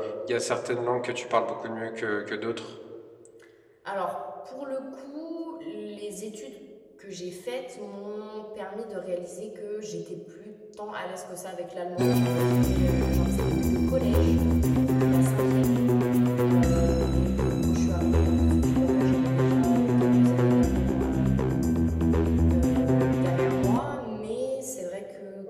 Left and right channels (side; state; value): both; identical; correlation 1.00